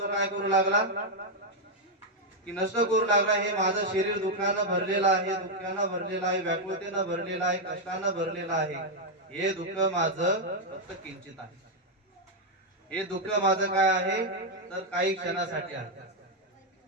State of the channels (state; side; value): normal; both; correlation 0.00